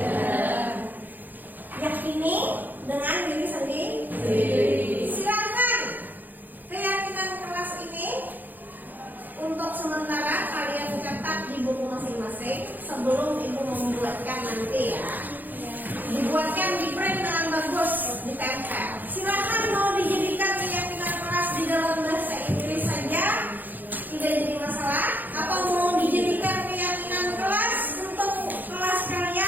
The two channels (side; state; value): left; late; 0.086 ms